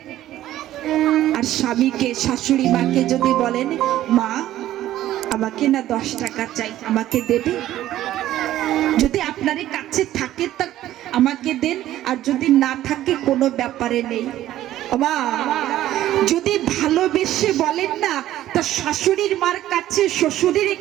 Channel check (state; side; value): quieter; left; 13.6 dB